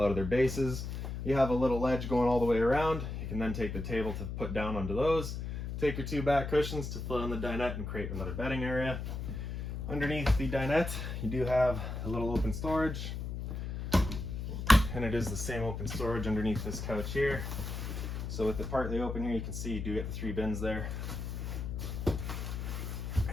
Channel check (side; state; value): left; noise; hum, 5 dB below the sound